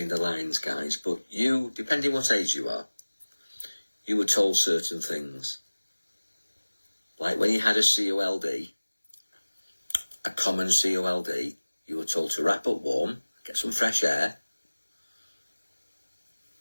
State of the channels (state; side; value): inverted; both; correlation -1.00